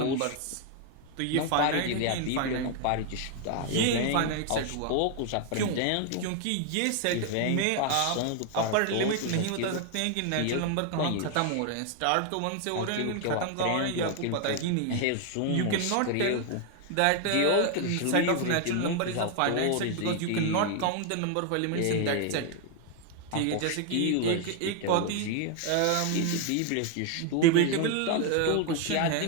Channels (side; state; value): both; different; correlation 0.00